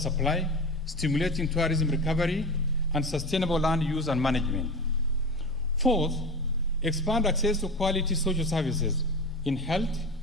stimulating tourism recovery, and sustainable land use and management. Fourth, expand access to quality social services in health,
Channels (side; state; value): left; noise; rumble, 22 dB below the sound